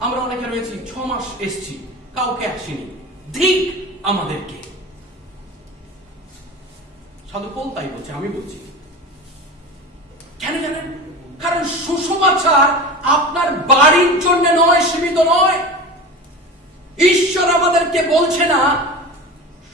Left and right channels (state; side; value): normal; both; correlation 0.30